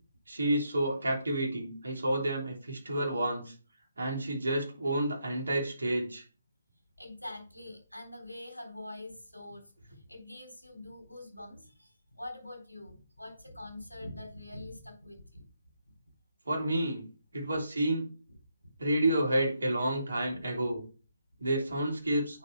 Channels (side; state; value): both; inverted; correlation -0.78